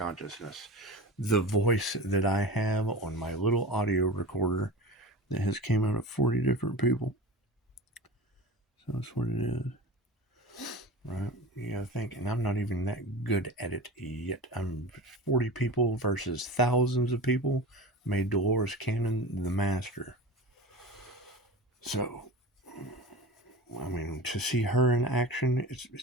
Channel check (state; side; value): normal; both; correlation 0.32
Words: the voice that I have on my little audio recorder that has came out of 40 different people. So that's what it is. Right? You gotta think, and I'm not even that good at it yet. I'm 40 people versus thousands of people made Dolores Cannon the master. So, I mean, to see her in action,